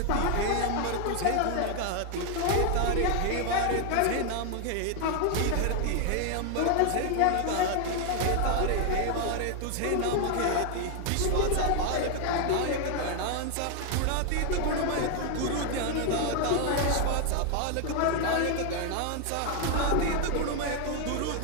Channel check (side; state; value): both; different; correlation 0.00